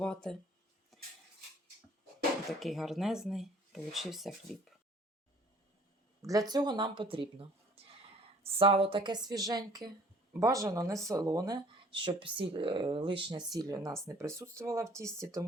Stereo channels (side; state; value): both; normal; correlation 0.54